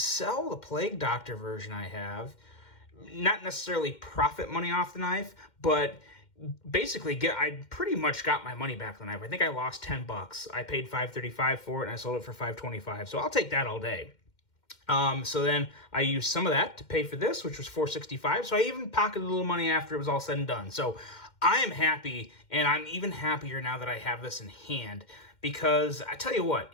the Plague Doctor version I have, not necessarily profit money off the knife, but basically I pretty much got my money back on the knife. I think I lost $10. I paid $5.35 for it, and I sold it for $5.25, so I'll take that all day. So then I used some of that to pay for this, which was $4.65. So I even pocketed a little money after it was all said and done. So I am happy, and I'm even happier now that I have this in hand, because I tell you what,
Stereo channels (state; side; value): late; right; 2.1 ms